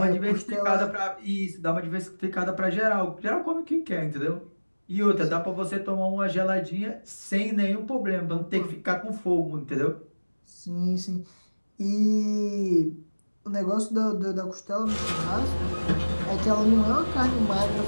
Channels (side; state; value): both; inverted; correlation -1.00